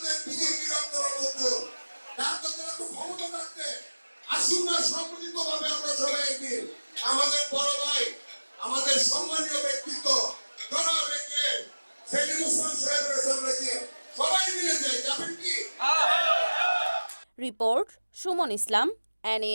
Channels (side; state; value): both; inverted; correlation -1.00